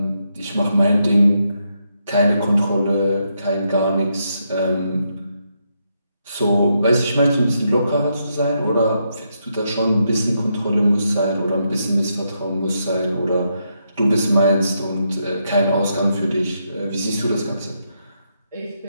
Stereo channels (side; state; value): both; inverted; correlation -0.80